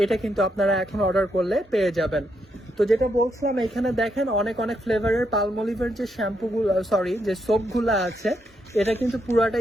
এটা কিন্তু আপনারা এখন অর্ডার করলে পেয়ে যাবেন। তো যেটা বলছিলাম, এখানে দেখেন অনেক ফ্লেভারের পালমলিভের যে শ্যাম্পুগুলো, সরি যে সোপগুলো আছে, এটা কিন্তু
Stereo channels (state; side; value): normal; both; correlation 0.79